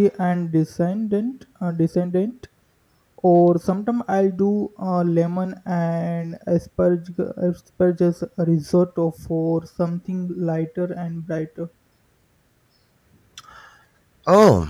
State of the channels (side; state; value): both; identical; correlation 1.00